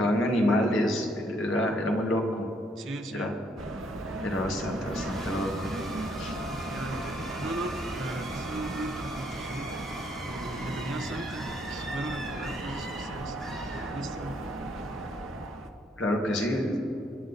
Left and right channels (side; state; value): both; normal; correlation 0.70